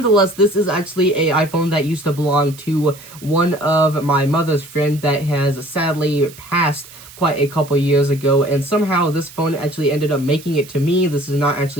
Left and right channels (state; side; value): noise; right; hiss, 19 dB below the sound